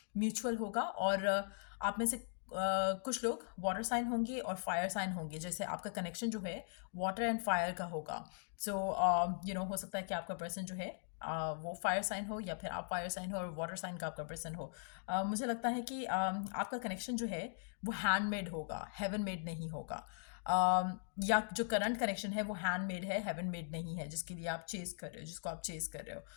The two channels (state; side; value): silent; right; digital silence